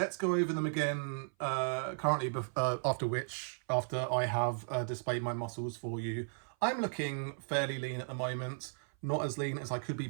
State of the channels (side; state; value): left; silent; 54 dB below the other